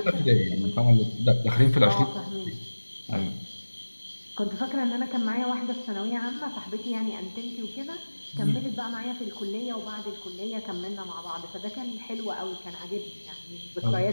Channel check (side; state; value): both; inverted; correlation -1.00